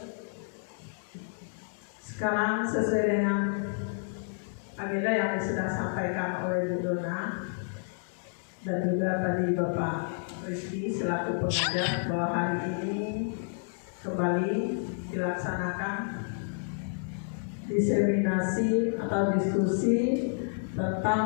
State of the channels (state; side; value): silent; right; digital silence